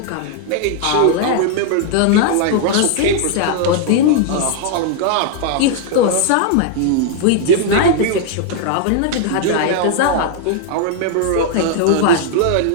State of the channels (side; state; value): both; different; correlation 0.00